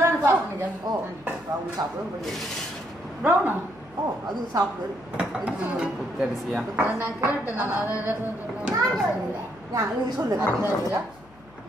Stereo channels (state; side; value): noise; left; hum, 25 dB below the sound